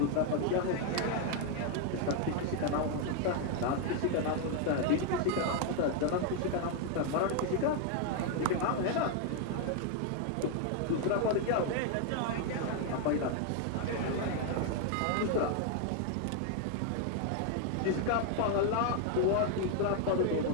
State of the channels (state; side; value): different; both; correlation 0.00